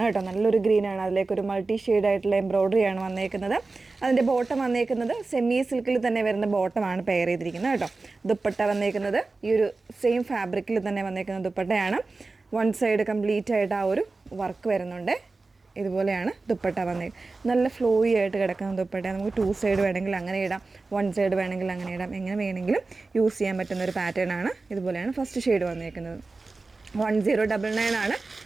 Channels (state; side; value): quieter; left; 3.7 dB